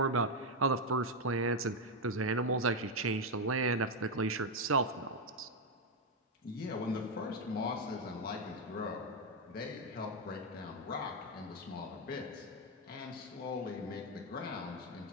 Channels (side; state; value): both; normal; correlation 0.04